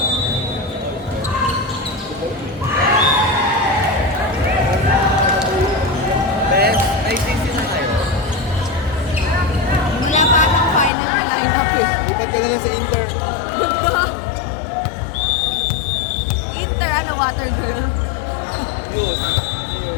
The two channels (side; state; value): right; drops out; at 10.9 s